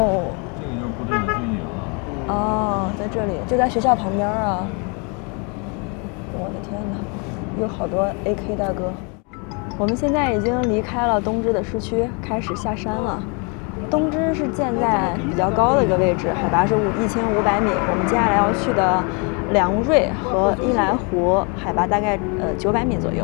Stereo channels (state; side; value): quieter; right; 34.0 dB